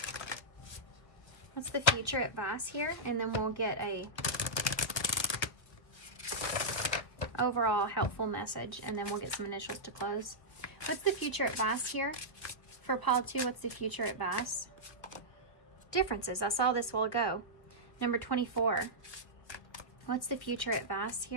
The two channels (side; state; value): right; late; 1.5 ms